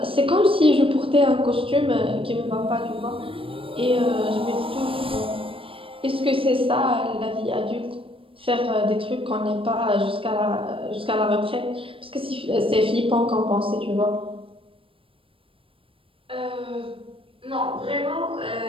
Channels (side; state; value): left; late; 0.26 ms